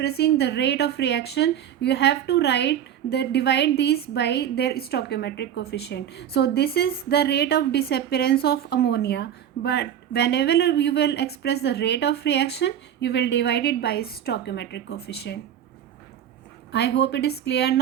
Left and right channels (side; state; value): left; quieter; 9.9 dB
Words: the rate of reaction, you have to divide these by their stoichiometric coefficient. So this is the rate of disappearance of ammonia, but whenever you will express the rate of reaction, you will divide it by stoichiometric coefficient. I hope it is clear